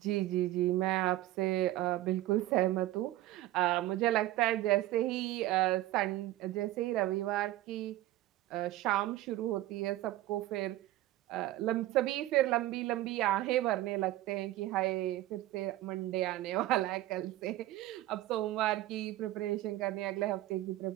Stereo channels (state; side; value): quieter; left; 15.7 dB